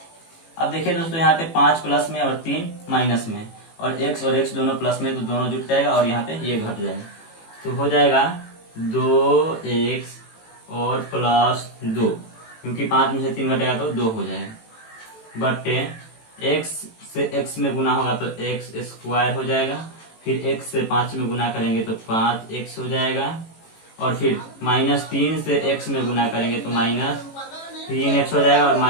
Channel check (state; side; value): late; right; 18 ms